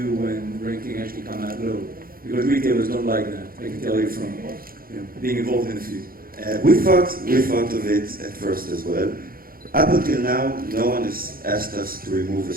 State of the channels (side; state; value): left; late; 0.42 ms